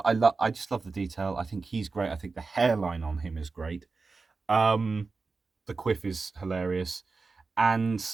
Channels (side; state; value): left; quieter; 4.2 dB